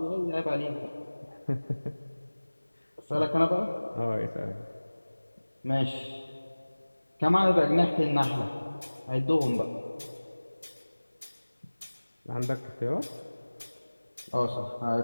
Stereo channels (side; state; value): both; inverted; correlation -1.00